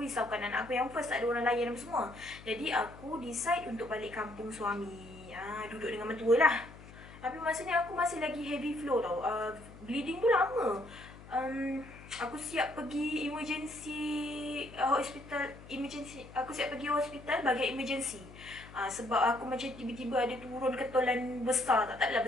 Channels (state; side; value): noise; left; hum, 18 dB below the sound